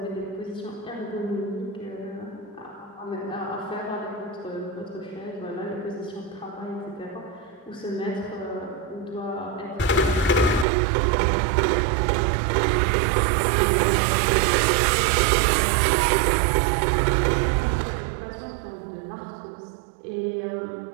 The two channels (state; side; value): drops out; left; at 10.7 s